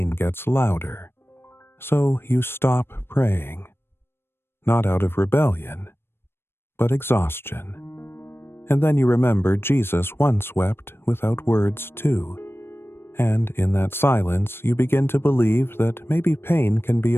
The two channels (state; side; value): late; right; 0.11 ms